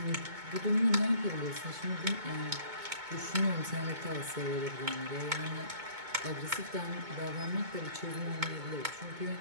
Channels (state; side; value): late; left; 2.2 ms